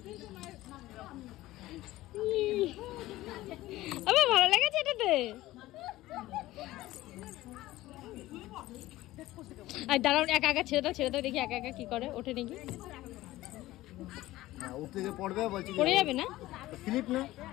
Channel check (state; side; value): quieter; right; 16.8 dB